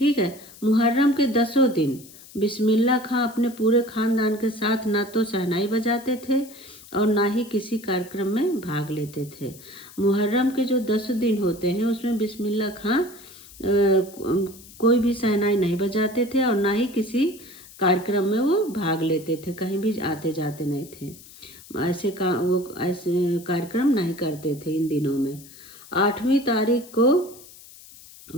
है। मुहर्रम के 10 दिन बिस्मिल्लाह खां अपने पूरे खानदान के साथ ना तो शहनाई बजाते थे और ना ही किसी कार्यक्रम में भाग लेते थे। मुहर्रम के जो 10 दिन होते हैं उसमें बिस्मिल्लाह खां कोई भी शहनाई नहीं बजाते थे और ना ही किसी कार्यक्रम में वो भाग लेते थे, कहीं भी आते जाते नहीं थे। वो ऐसे कार्यक्रम नहीं करते थे इन दिनों में। 8वीं तारीख को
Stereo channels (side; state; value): left; noise; hiss, 20 dB below the sound